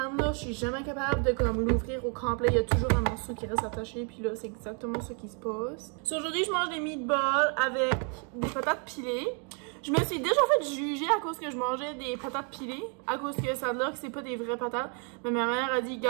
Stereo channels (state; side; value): quieter; left; 38.7 dB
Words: là, je suis jamais capable de comme l'ouvrir au complet. Il y a toujours un morceau qui reste attaché, puis là, c'est exactement ce qui se passe. So, aujourd'hui, je mange des meatballs avec des patates pilées. Je me suis déjà fait juger à cause que je mangeais des patates pilées, à cause que ça a l'air que c'est pas des vraies patates. Mais ma mère a dit,